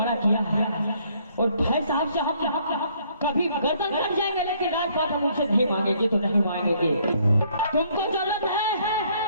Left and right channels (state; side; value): inverted; both; correlation -0.65